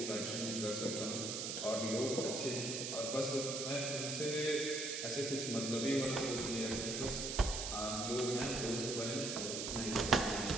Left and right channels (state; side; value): noise; right; hiss, 3 dB below the sound